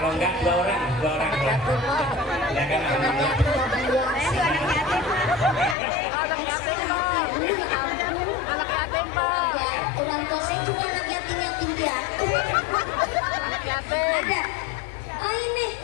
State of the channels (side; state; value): right; drops out; at 5.8 s